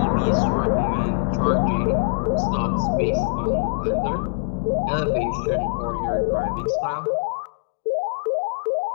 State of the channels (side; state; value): right; silent; digital silence